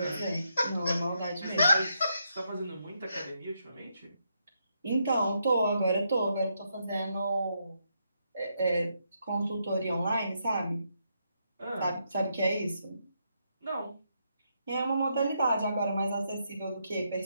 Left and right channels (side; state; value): both; inverted; correlation -0.79